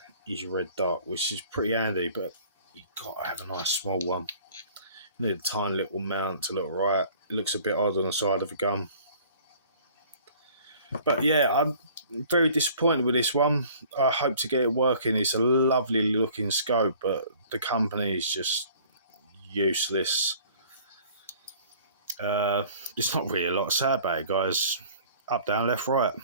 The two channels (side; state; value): both; inverted; correlation -0.51